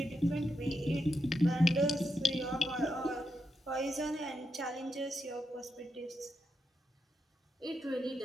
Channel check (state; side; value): normal; both; correlation 0.84